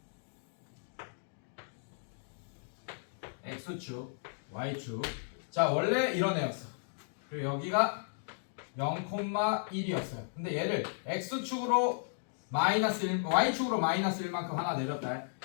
x축, y축. 자, 원래 이런 애였어. 그리고 여기가 0,1이었어요. 근데 얘를 x축으로 마이너스 1, y축으로 마이너스 1만큼 하나 내렸다.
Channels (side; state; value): right; silent; digital silence